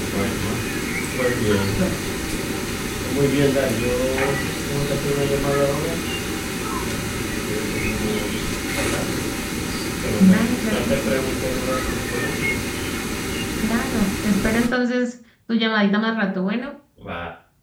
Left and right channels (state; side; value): identical; both; correlation 1.00